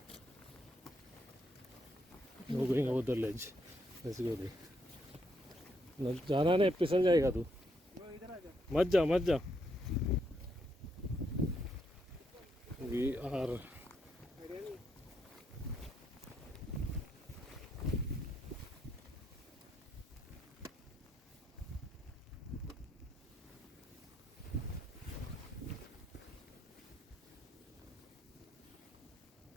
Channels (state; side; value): normal; both; correlation 0.76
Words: No going over the ledge. Let's go there. जाना नहीं, फिसल जाएगा तू. मत जा. We are